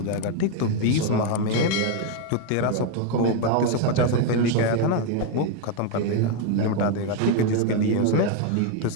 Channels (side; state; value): both; different; correlation 0.01